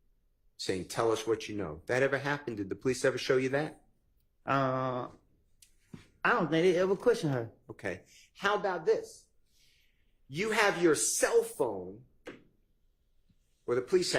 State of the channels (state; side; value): identical; both; correlation 1.00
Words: saying, tell us what you know? That ever happened? Did the police ever show you that? I don't think they ever questioned her. Okay. How about this? You have your cell phone, or the police